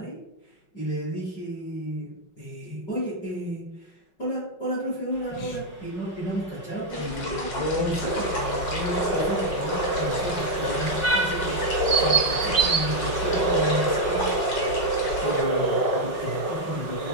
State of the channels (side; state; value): right; late; 5.4 ms